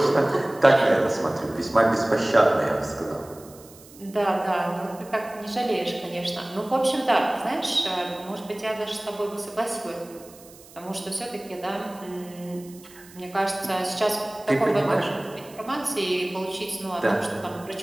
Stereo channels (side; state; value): right; noise; hiss, 22 dB below the sound